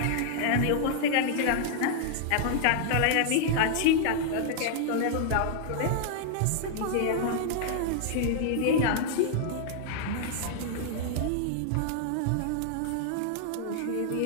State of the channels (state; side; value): different; both; correlation -0.01